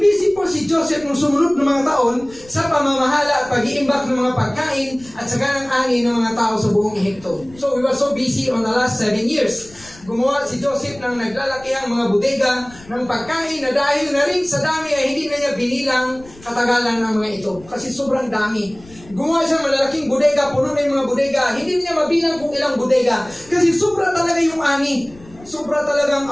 busy po si Joseph nung sumunod ng mga taon sa pamamahala at pag-iimbak ng mga pagkain at sa ganang ani ng mga tao sa buong Ehipto. So, we were so busy on the last 7 years. Gumawa si Joseph ng naglalakihang mga bodega ng pagkain na dahil na rin sa dami ay hindi na niya binilang katagalan ng mga ito. Kasi sobrang dami. Gumawa siya malalaking bodega, puno na yung mga bodega. Hindi niya mabilang kung ilang bodega. Kasi sobra talaga yung ani. Sobra talagang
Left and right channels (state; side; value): noise; left; rumble, 22 dB below the sound